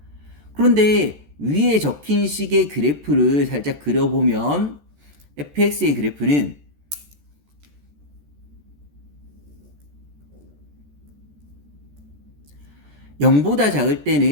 그런데 위에 적힌 식의 그래프를 살짝 그려보면 fx의 그래프는 (0보다) 작을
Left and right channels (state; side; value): late; left; 14 ms